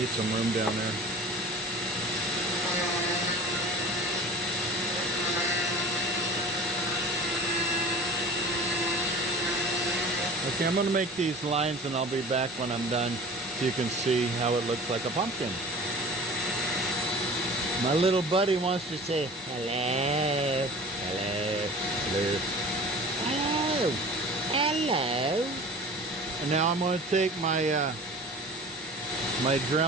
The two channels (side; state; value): both; normal; correlation 0.40